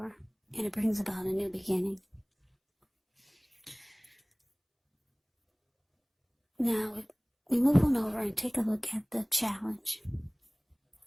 and it brings about a new beginning. Now, we move on over and take a look at the challenge.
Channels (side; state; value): both; identical; correlation 1.00